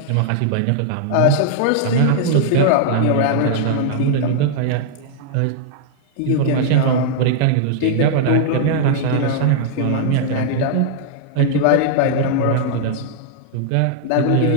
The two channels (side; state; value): both; different; correlation -0.01